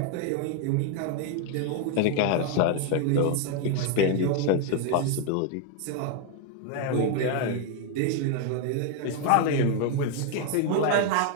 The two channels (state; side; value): different; both; correlation 0.01